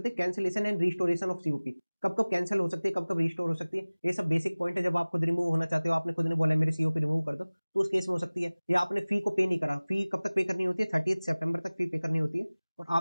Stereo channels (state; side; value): inverted; both; correlation -1.00